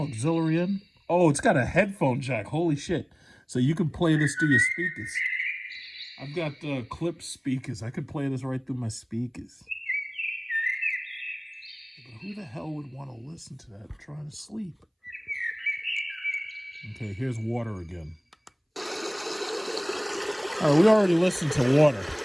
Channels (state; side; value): identical; both; correlation 1.00